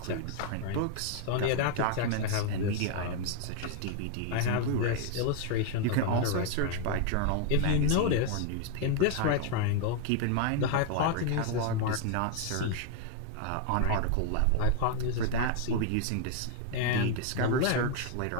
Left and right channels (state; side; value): different; both; correlation 0.00